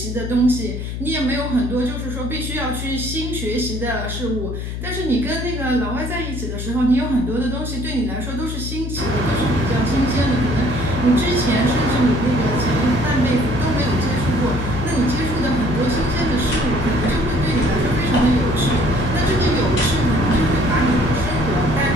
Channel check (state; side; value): noise; left; hum, 5 dB below the sound